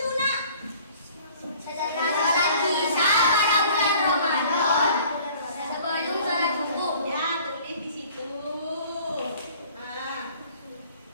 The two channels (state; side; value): inverted; both; correlation -0.51